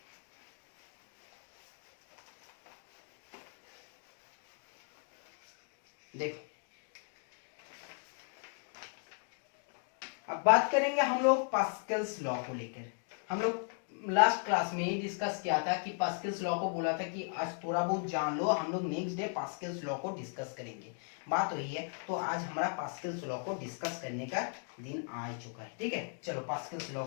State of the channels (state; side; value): silent; right; 53 dB below the other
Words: देखो अब बात करेंगे हम लोग पास्कल्स लॉ को लेकर। हम लोग लास्ट क्लास में ही डिस्कस किया था कि पास्कल्स लॉ को बोला था कि आज थोड़ा बहुत जान लो, हम लोग नेक्स्ट डे पास्कल्स लॉ को डिस्कस करेंगे, बात वही है। तो आज हमारा पास्कल्स लॉ को डिस्कस करने का दिन आ चुका है, ठीक है। चलो पास्कल्स लॉ